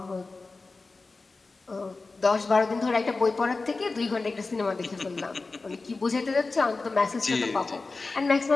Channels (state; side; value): quieter; right; 3.8 dB